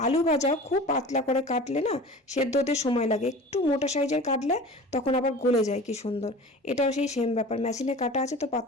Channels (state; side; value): normal; both; correlation 0.39